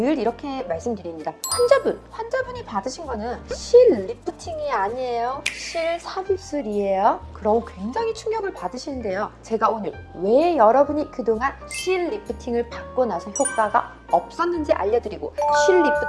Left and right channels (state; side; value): identical; both; correlation 1.00